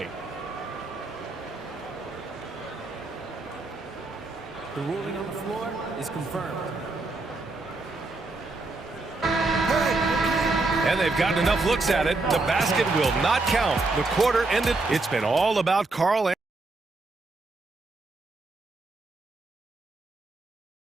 The ruling on the floor is confirmed. And they've gotten enough looks at it. The basket will not count. The quarter ended. It's been all about Karl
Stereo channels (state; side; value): quieter; left; 3.3 dB